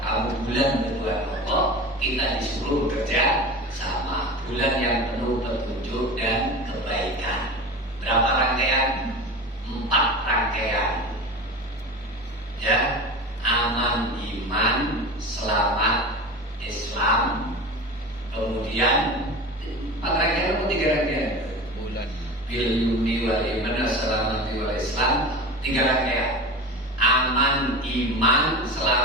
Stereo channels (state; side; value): normal; both; correlation 0.30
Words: kamu bulan bertuhan Allah. Kita disuruh bekerja sama. Bulan yang penuh petunjuk dan kebaikan. Berapa rangkaian? 4 rangkaian. Ya, aman iman, selamat Islam. Kemudian 4 rangkaian atau 3 rangkaian? Bulan bil yumni wal iman, selamat wal Islam. 3 rangkaian. Aman, iman,